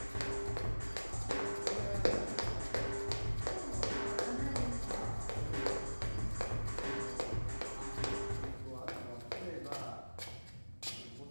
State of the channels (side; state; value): both; inverted; correlation -1.00